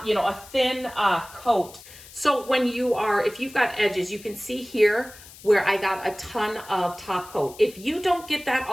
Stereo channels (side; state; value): left; noise; hiss, 19 dB below the sound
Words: coat. So when if you've got edges, you can see here where I got a ton of top coat. If you don't get that